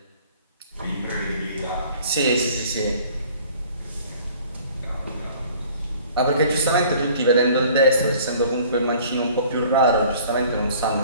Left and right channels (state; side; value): inverted; both; correlation -0.52